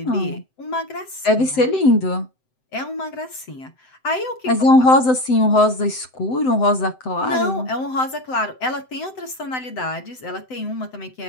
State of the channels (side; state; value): right; late; 7.8 ms